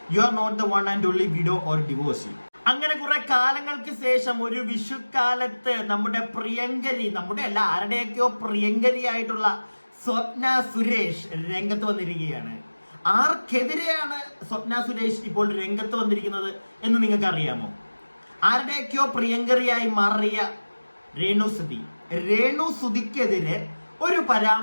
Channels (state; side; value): inverted; both; correlation -1.00